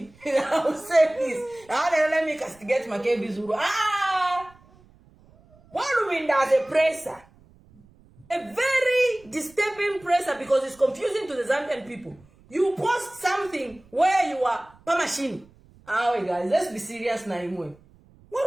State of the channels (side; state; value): right; noise; rumble, 28 dB below the sound